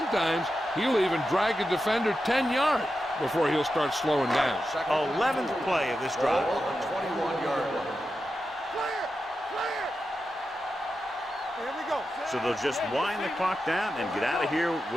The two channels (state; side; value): normal; both; correlation 0.90